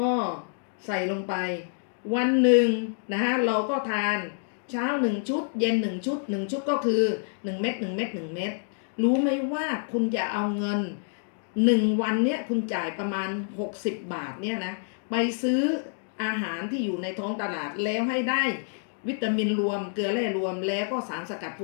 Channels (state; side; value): silent; right; digital silence